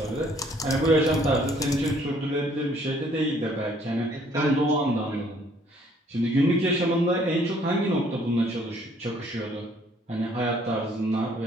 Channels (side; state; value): both; normal; correlation 0.62